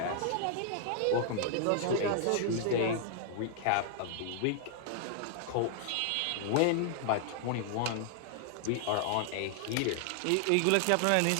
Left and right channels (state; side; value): different; both; correlation 0.00